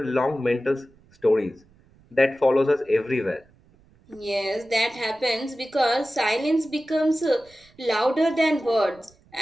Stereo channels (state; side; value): noise; right; rumble, 30 dB below the sound